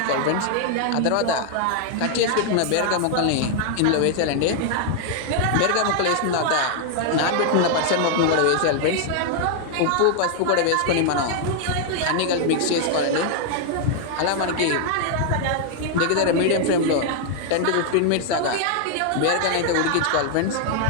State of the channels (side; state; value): both; different; correlation 0.00